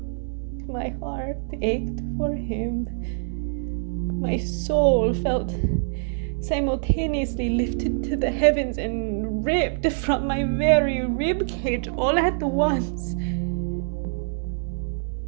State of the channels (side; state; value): left; silent; 62 dB below the other